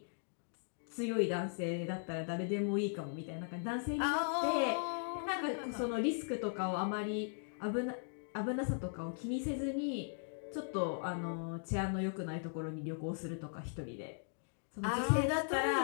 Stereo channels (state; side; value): silent; right; digital silence